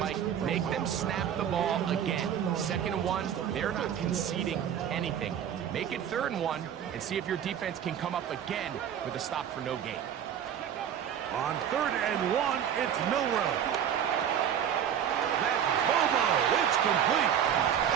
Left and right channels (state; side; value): quieter; left; 9.2 dB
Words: Make them snap the ball again. 2nd and 1, they're not conceding anything. Make it 3rd and 1 and see if your defense can come up again with a stop for no gain. On 3rd and 1, it's Milrow. That's Bobo. It's complete.